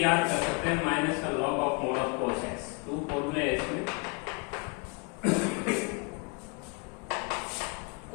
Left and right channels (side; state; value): right; quieter; 32.6 dB